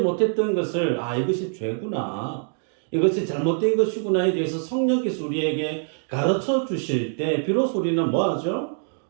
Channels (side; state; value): left; silent; 62 dB below the other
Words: 것을 이것이 죄구나, 이것이 잘못된 것이구나에 대해서 성령께서 우리에게 가르쳐 주실 때 비로소 우리는 뭐하죠?